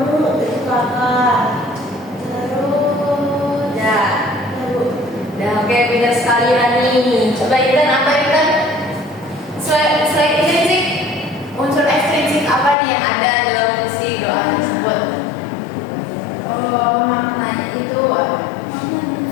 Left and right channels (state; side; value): drops out; right; at 12.8 s